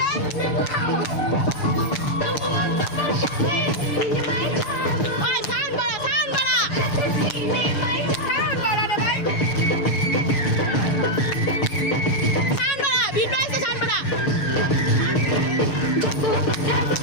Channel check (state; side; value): late; right; 6.8 ms